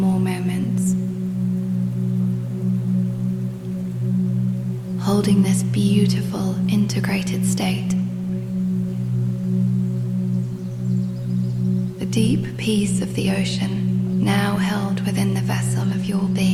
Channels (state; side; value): identical; both; correlation 1.00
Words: moments, holding this beautiful integrated state. The deep peace of the ocean now held within the vessel of your